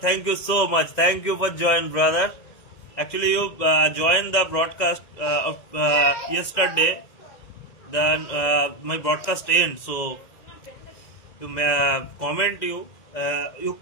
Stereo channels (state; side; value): late; right; 2.0 ms